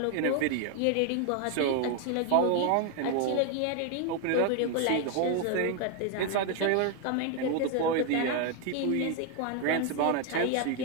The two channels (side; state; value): both; different; correlation 0.01